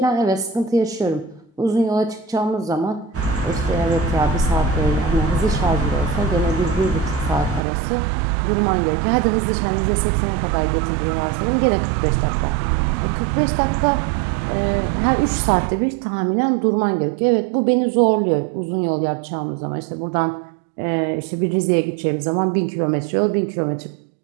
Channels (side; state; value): left; drops out; at 7.6 s